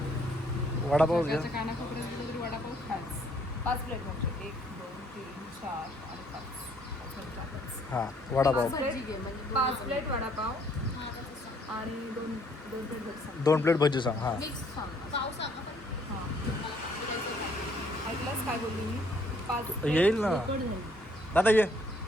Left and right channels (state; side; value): normal; both; correlation 0.65